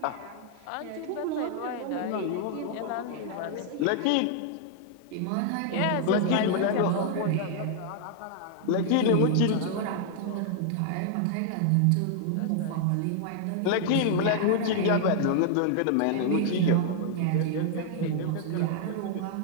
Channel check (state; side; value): different; both; correlation -0.01